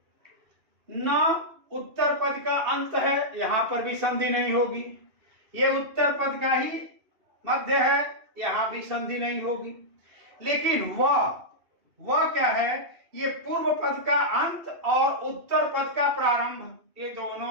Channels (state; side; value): late; left; 2.7 ms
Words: न उत्तर पद का अंत है, यहां पर भी संधि नहीं होगी। ये उत्तर पद का ही मध्य है, यहां भी संधि नहीं होगी। लेकिन वह क्या है, ये पूर्व पद का अंत और उत्तर पद का प्रारंभ, ये